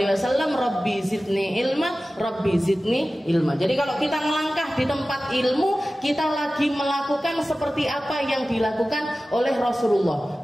Wasallam. Rabbi zidni ilma, Rabbi zidni ilma. Jadi kalau kita melangkah di tempat ilmu, kita lagi melakukan seperti apa yang dilakukan oleh Rasulullah.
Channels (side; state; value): both; normal; correlation 0.96